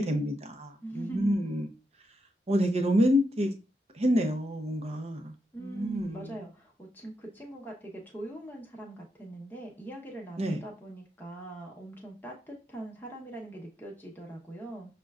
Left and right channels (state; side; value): normal; both; correlation 0.84